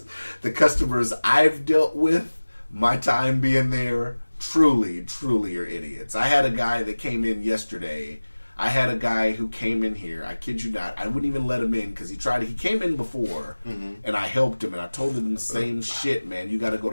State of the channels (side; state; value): both; inverted; correlation -1.00